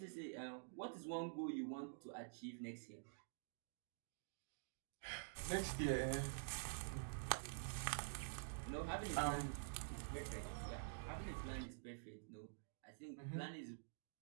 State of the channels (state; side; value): silent; left; digital silence